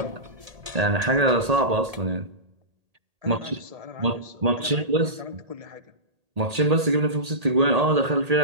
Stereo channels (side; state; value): left; late; 1.8 ms